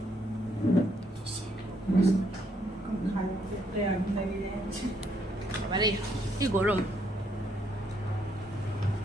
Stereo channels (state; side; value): normal; both; correlation 0.72